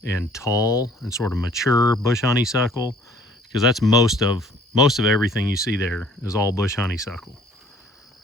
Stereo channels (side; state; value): both; normal; correlation 0.55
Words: and tall and sort of mature bush honeysuckle, because that's most of everything you see there is all bush honeysuckle,